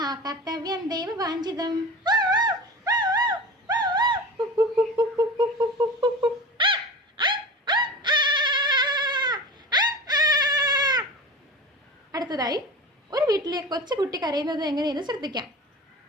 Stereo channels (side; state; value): both; normal; correlation 0.33